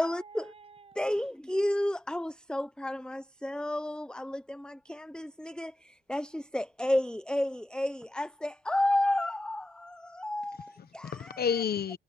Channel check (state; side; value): normal; both; correlation 0.90